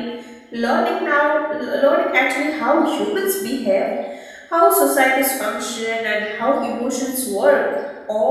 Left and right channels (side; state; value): both; identical; correlation 1.00